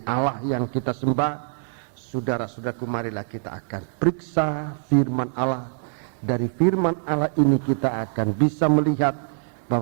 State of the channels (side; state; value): left; silent; digital silence